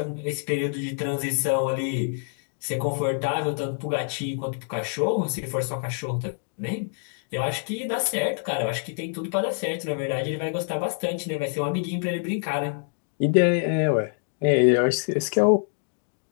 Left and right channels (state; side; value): silent; right; 61 dB below the other